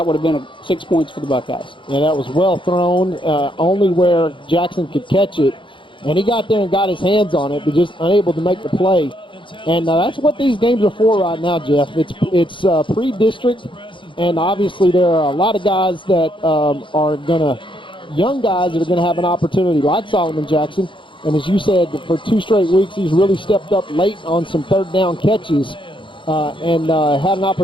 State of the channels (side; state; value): right; late; 0.24 ms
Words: would have been 6 points for the Buckeyes. Yeah, that was well thrown, only where Jackson could catch it. And he got there and got his hands on it, but just unable to make the play. And that's what these games are for right now, Jeff. It's pre-district, and obviously there are a lot of guys that young guys that are going to have an opportunity, like Solomon Jackson. And as you said, for 2 straight weeks, he's really stepped up late on some 3rd down catches and had an